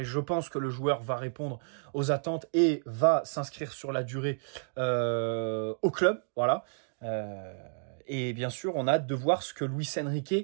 je pense que le joueur va répondre aux attentes et va s'inscrire sur la durée au club, voilà. Et bien sûr, on a hâte de voir ce que Luis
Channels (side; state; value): left; silent; digital silence